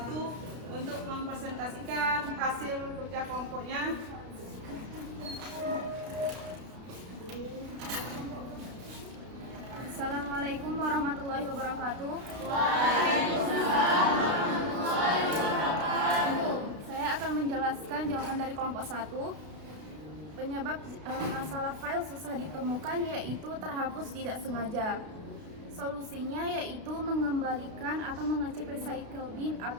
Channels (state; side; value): late; left; 32 ms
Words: untuk mempresentasikan hasil kerja kelompoknya. Assalamualaikum warahmatullahi wabarakatuh. Saya akan menjelaskan jawaban dari kelompok 1. Penyebab masalah file susah ditemukan yaitu terhapus tidak sengaja. Solusinya yaitu mengembalikan atau mengecek recycle bin